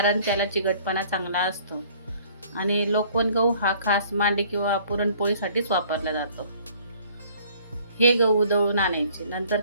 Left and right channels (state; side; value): inverted; both; correlation -0.55